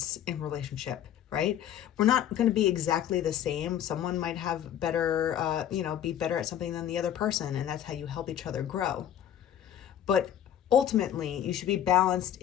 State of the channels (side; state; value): right; quieter; 10.4 dB